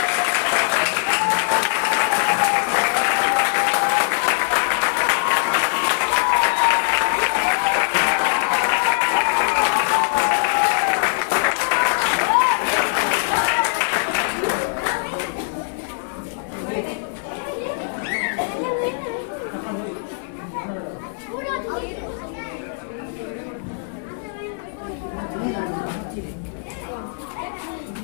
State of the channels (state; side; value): silent; right; digital silence